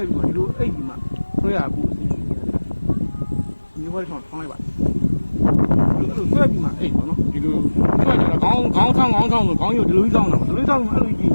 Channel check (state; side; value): inverted; both; correlation -1.00